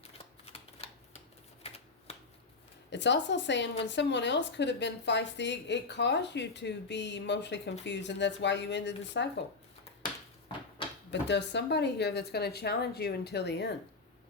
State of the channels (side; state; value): right; quieter; 4.0 dB